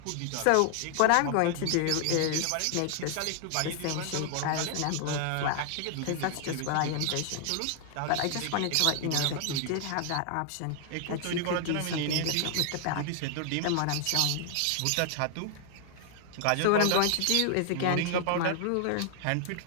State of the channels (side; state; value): both; different; correlation 0.00